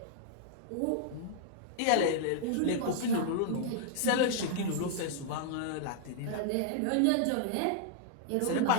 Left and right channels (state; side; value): different; both; correlation -0.01